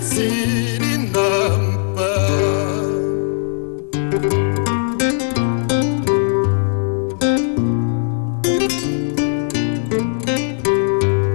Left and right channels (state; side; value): silent; right; 67 dB below the other